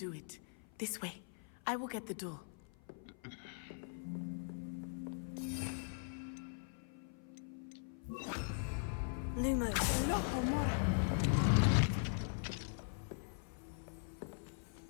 it. This way. I will get the door. Lumos.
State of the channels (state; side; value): silent; right; 50 dB below the other